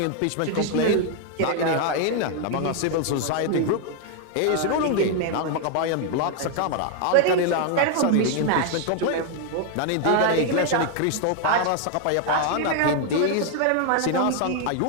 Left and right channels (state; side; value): different; both; correlation 0.00